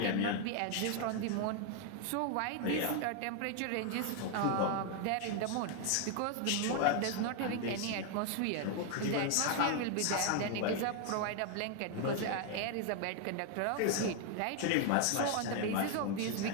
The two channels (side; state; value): both; different; correlation 0.00